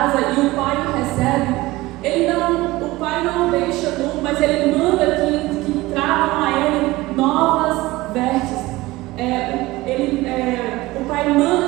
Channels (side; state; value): left; quieter; 19.4 dB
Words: e o pai o recebe, o pai não o deixa nu, mas ele manda que tragam a ele novas vestes. O pai